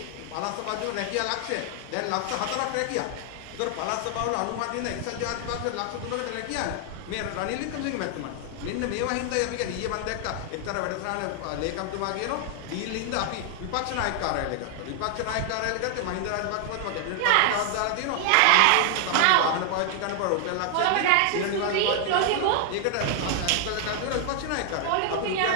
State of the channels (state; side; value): different; both; correlation 0.00